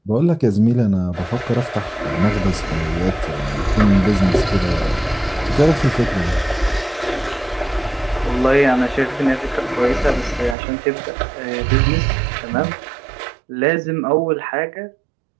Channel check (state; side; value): drops out; left; at 10.6 s